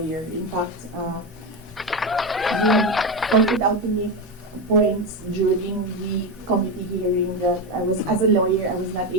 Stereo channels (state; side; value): normal; both; correlation 0.13